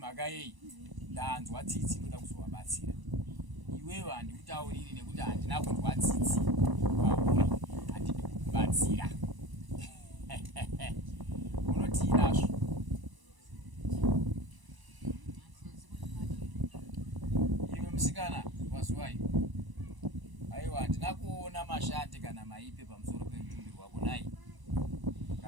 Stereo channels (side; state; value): left; late; 1.0 ms